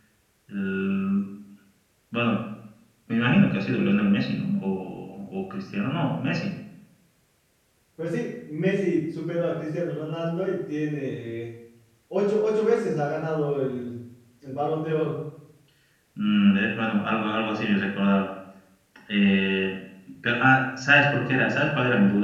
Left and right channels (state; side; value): identical; both; correlation 1.00